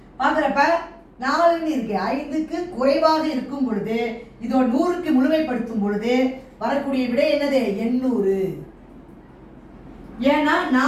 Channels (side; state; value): both; identical; correlation 1.00